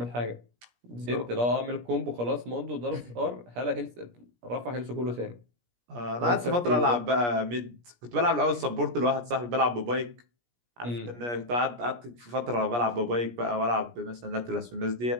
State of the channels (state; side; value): late; left; 17 ms